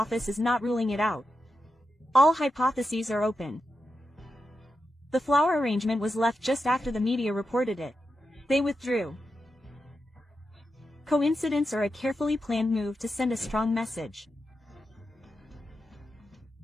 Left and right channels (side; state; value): both; normal; correlation 0.88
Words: is not ruling it out. All hypotheses are open. The flower arrangement was left just after the media reported it. They withdrew. Coincidence or a carefully planned move to send a strong message?